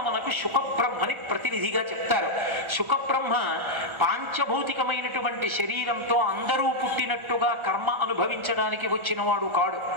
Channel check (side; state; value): left; late; 1.4 ms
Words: శుకబ్రహ్మని ప్రతినిధిగా చెప్తారు. శుకబ్రహ్మ పాంచభౌతికమైనటువంటి శరీరంతో అందరూ పుట్టినట్టుగా కర్మ అనుభవించడానికి వచ్చినవాడు కాడు.